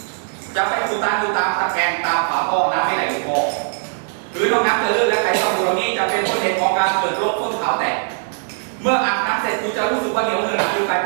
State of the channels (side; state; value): left; silent; 66 dB below the other